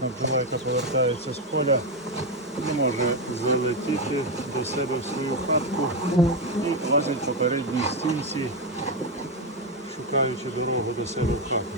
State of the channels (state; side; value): normal; both; correlation 0.07